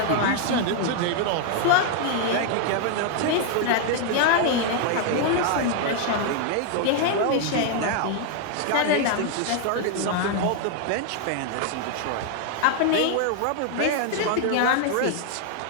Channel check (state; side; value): different; both; correlation 0.00